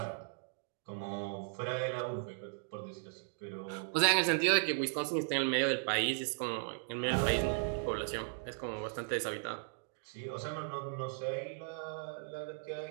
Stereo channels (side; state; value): left; silent; digital silence